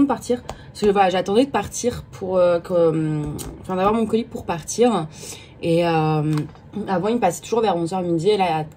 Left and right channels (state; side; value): identical; both; correlation 1.00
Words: partir, parce que voilà, j'attendais de partir pour d'avoir mon colis pour partir. Et avant il passait toujours vers 11h midi et là à